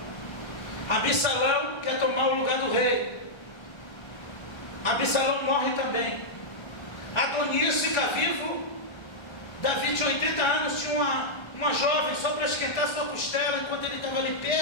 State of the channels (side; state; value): right; late; 1.3 ms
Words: Absalão quer tomar o lugar do rei. Absalão morre também. Adonias fica vivo. Davi tinha 80 anos, tinha uma jovem só para esquentar sua costela enquanto ele estava ali